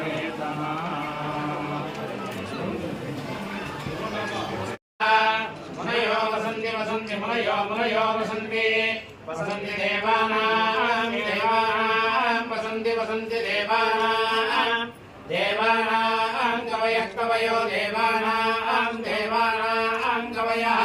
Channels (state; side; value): identical; both; correlation 1.00